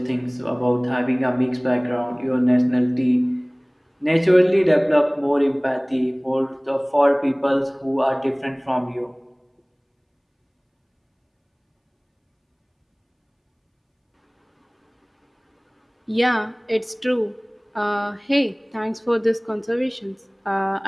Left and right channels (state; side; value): identical; both; correlation 1.00